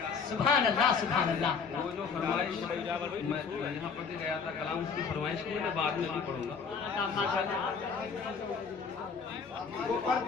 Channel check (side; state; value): right; quieter; 5.7 dB